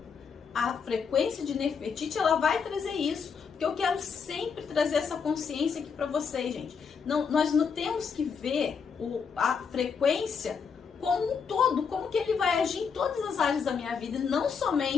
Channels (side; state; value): right; quieter; 6.1 dB